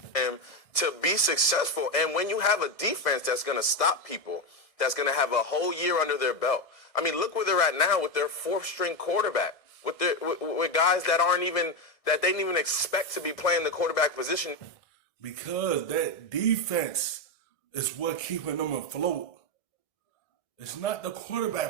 To be successful, and when you have a defense that's going to stop people, that's going to have a whole year under their belt. I mean, look where they're at now with their fourth-string quarterback, with guys that they didn't even expect to be playing the quarterback position. Because that defense is what keeping them afloat. It's not the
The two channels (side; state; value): right; late; 1.6 ms